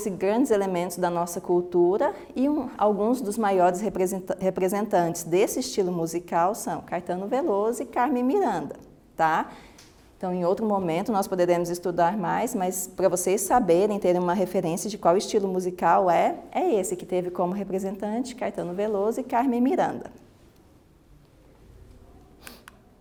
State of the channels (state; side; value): identical; both; correlation 1.00